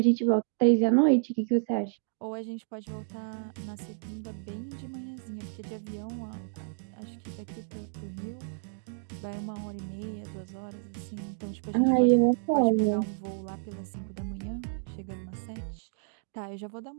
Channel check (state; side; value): silent; left; digital silence